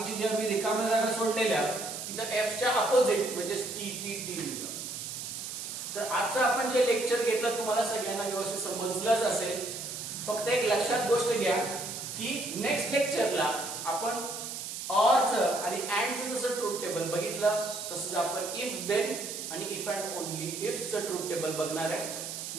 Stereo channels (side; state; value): right; noise; hiss, 7 dB below the sound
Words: ज्या मी रिकाम्या जागा सोडलेल्या तिथं एफच्या अपोजिट म्हणजे टी टी टी लिहिलं. तर आजचं आपण जे लेक्चर घेतलं तुम्हाला सगळ्यांना व्यवस्थित समजलंच असेल. फक्त एक लक्षात गोष्ट घ्या की नेक्स्ट लेक्चरला आपण ऑरचं आणि अँडचं जसं ट्रूथ टेबल बघितलं तसंच आपण इफ देन आणि इफ अँड ओनली इफचं ट्रूथ टेबल बघणार आहे.